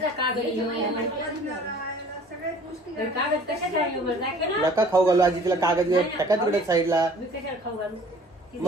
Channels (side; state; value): both; normal; correlation 0.51